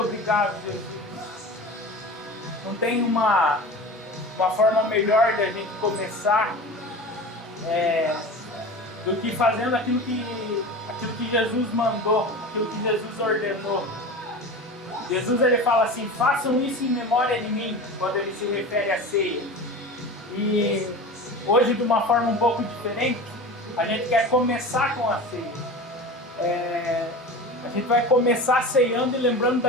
Jesus. Não tem uma forma melhor de a gente começar do que fazendo aquilo que Jesus mandou, aquilo que Jesus ordenou. Jesus, ele fala assim: façam isso em memória de mim, quando ele se refere à ceia. E hoje, de uma forma um pouco diferente, a gente quer começar com a ceia. A gente vai começar ceando e lembrando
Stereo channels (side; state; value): both; normal; correlation 0.32